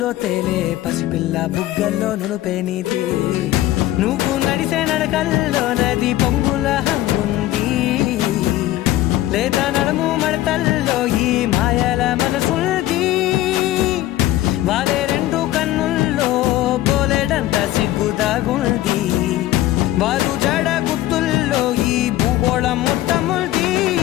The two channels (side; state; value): right; quieter; 15.0 dB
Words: తేలే పసిపిల్ల బుగ్గల్లో నునుపే నీతి నువ్వు నడిసే నడకల్లో నది పొంగుల హంగుంది లేదా నడుము మడతల్లో ఈ మాయల మనసుంది వారే రెండు కన్నుల్లో బోలెడంత సిగ్గుదాగుంది వారు జడ గుత్తుల్లో ఈ భూగోళం మొత్తముంది